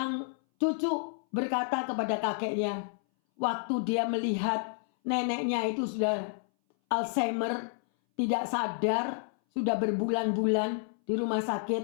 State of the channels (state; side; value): silent; right; 58 dB below the other